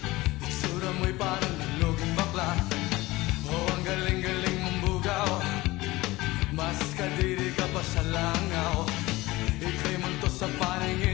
Itsura mo'y parang naluging bakla. Oh, ang galing-galing mong bugaw. Mas kadiri ka pa sa langaw. Ika'y multo sa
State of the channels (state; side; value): quieter; right; 19.8 dB